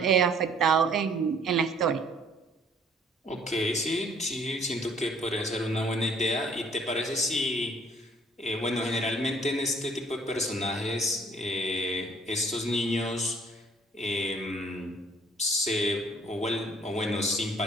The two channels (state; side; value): normal; both; correlation 0.59